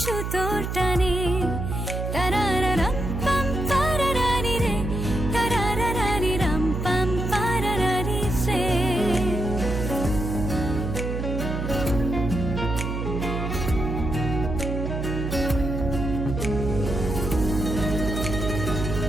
সুতোর টানে। তারারারাম পাম পারারারি রে, তারারারারি রাম পাম পারারারি রে।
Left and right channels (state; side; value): noise; right; hum, 3 dB below the sound